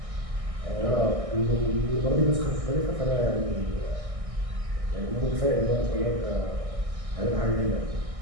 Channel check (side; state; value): left; late; 1.6 ms